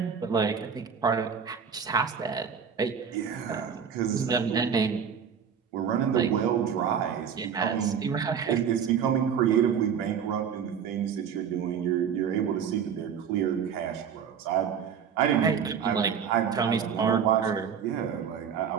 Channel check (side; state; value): left; quieter; 7.4 dB